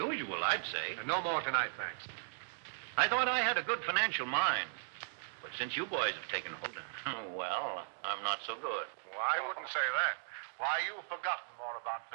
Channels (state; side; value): silent; left; digital silence